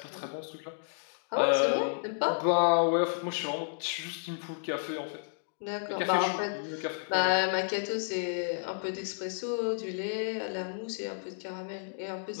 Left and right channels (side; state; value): right; silent; digital silence